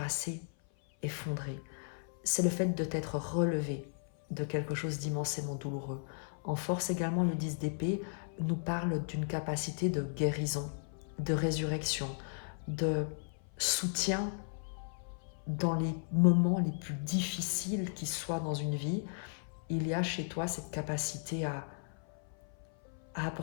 effondré. C'est le fait de t'être relevé de quelque chose d'immensément douloureux. En force également, le 10 d'épée nous parle d'une capacité de guérison, de résurrection, de soutien dans les moments les plus difficiles qui soient dans une vie. Il y a chez toi cette capacité à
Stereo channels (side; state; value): right; silent; 54 dB below the other